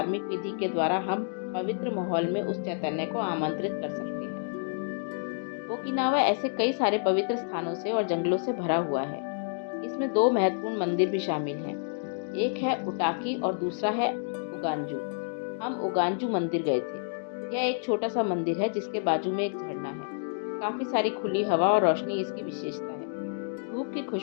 विधि के द्वारा हम पवित्र माहौल में उस चैतन्य को आमंत्रित कर सकते हैं। ओकिनावा ऐसे कई सारे पवित्र स्थानों से और जंगलों से भरा हुआ है। इसमें 2 महत्वपूर्ण मंदिर भी शामिल हैं। एक है उटाकी और दूसरा है उगांजू। हम उगांजू मंदिर गए थे। यह एक छोटा सा मंदिर है जिसके बाजू में एक झरना है। काफ़ी सारी खुली हवा और रोशनी इसकी विशेषता है। धूप की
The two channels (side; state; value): right; silent; digital silence